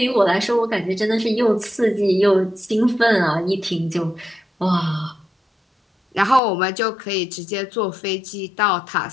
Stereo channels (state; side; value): drops out; right; at 6.4 s